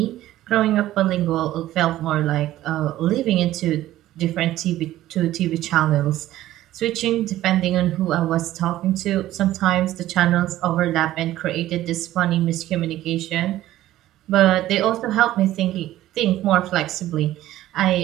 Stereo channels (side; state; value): left; quieter; 14.4 dB